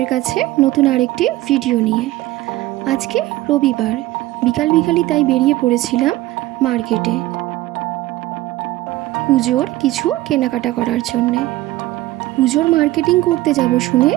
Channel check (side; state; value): left; quieter; 17.1 dB